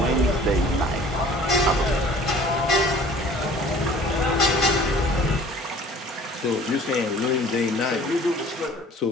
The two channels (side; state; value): both; normal; correlation 0.49